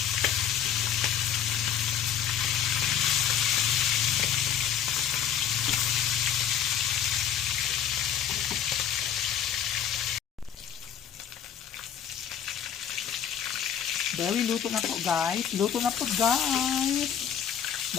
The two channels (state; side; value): quieter; right; 9.0 dB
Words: Very luto na po guys. Luto na po guys.